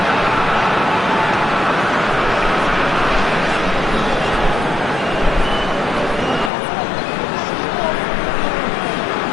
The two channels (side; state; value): right; drops out; at 6.5 s